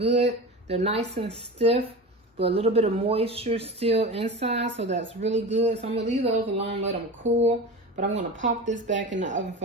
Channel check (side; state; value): both; normal; correlation 0.29